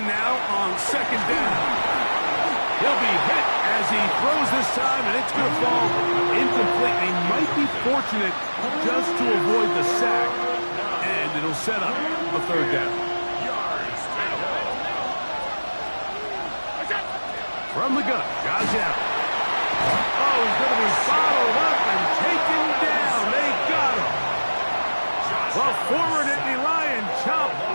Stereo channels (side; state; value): both; inverted; correlation -1.00